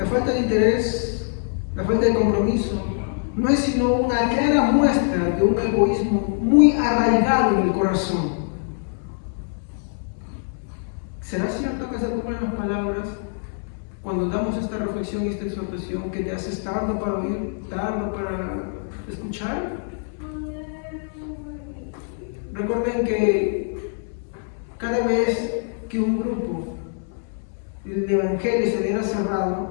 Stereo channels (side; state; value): right; silent; 63 dB below the other